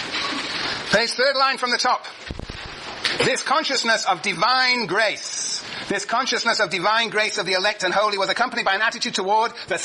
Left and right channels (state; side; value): identical; both; correlation 1.00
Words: Page 3rd line from the top. This consciousness of divine grace of the elect and holy was accompanied by an attitude toward the